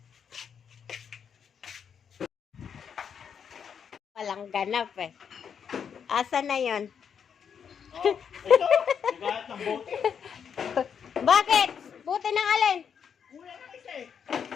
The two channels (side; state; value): right; quieter; 7.4 dB